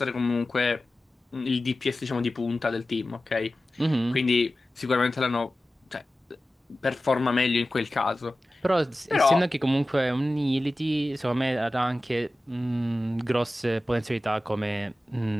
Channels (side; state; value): both; normal; correlation 0.95